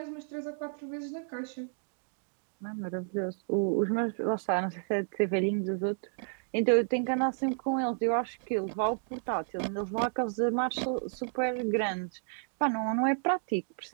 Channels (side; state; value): left; silent; digital silence